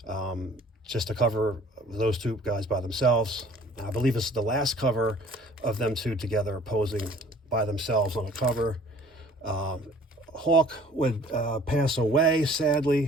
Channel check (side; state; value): both; normal; correlation 0.52